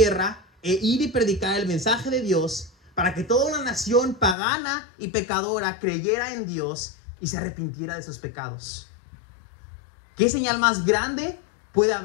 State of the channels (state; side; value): drops out; right; at 4.4 s